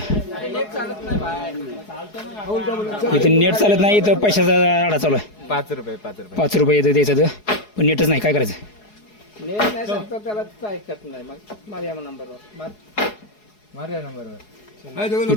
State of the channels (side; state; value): right; late; 4.7 ms